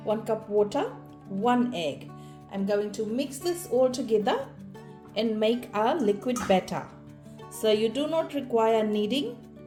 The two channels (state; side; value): identical; both; correlation 1.00